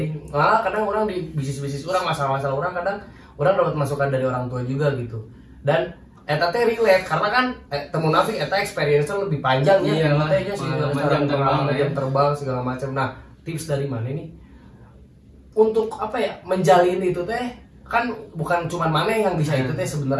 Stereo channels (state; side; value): identical; both; correlation 1.00